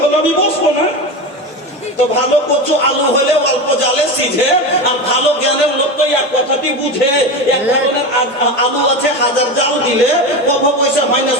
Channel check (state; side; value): normal; both; correlation 0.22